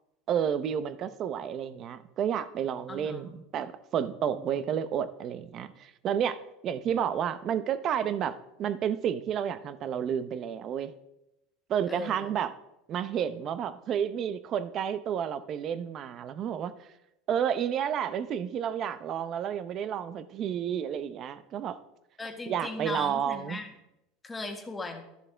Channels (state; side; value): quieter; left; 7.9 dB